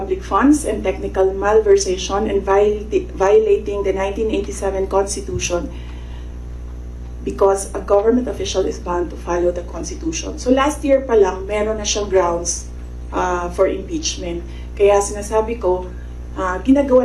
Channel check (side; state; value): both; identical; correlation 1.00